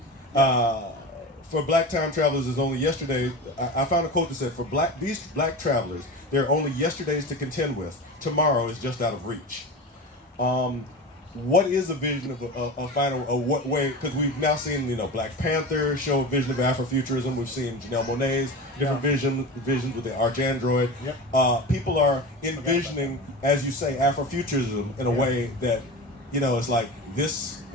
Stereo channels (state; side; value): normal; both; correlation 0.28